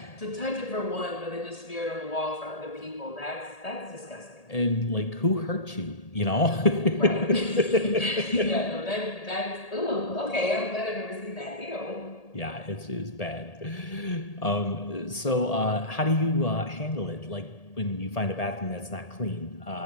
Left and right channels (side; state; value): right; late; 1.8 ms